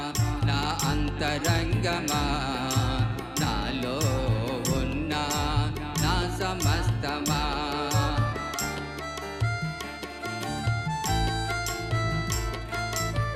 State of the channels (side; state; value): both; identical; correlation 1.00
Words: నా అంతరంగమా నాలో ఉన్న నా సమస్తమా.